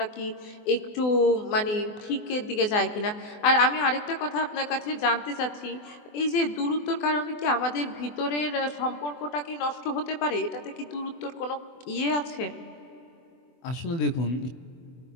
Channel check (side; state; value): right; late; 24 ms